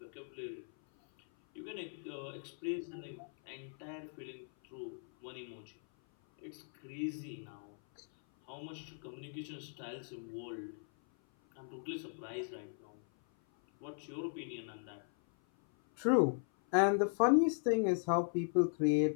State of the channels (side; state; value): right; silent; 52 dB below the other